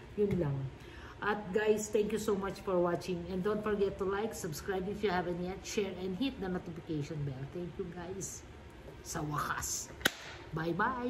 Yun lang. At guys, thank you so much for watching. And don't forget to like, subscribe if you haven't yet, share, and hit the notification bell. Thank you guys. Sa wakas. Bye-bye.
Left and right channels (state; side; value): identical; both; correlation 1.00